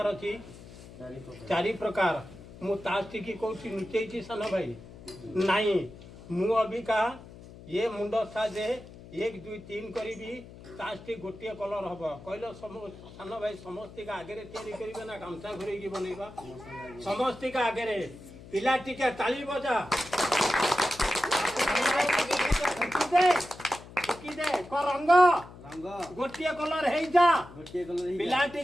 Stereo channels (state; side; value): noise; left; hum, 17 dB below the sound